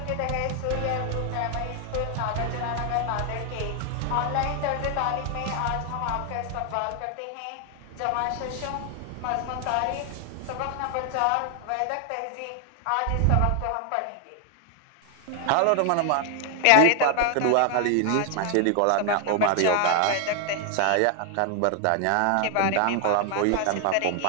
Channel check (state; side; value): different; both; correlation 0.00